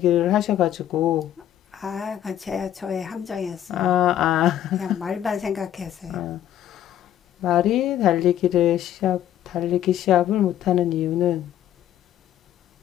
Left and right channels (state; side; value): quieter; right; 11.4 dB